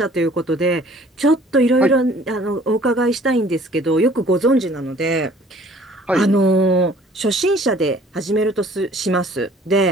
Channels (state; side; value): normal; both; correlation 0.54